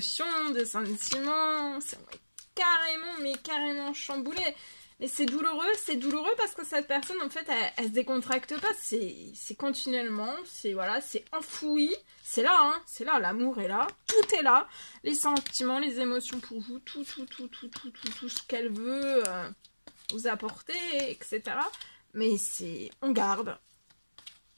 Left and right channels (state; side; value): inverted; both; correlation -1.00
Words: de sentiments. C'est carrément chamboulé. Et c'est douloureux parce que cette personne, en fait, elle se décontracte pas. C'est continuellement, c'est enfoui. C'est là, l'amour est là. Tout est là. Les sentiments, les émotions pour vous, tout ce qu'elle veut vous apporter, etc. Mais on garde.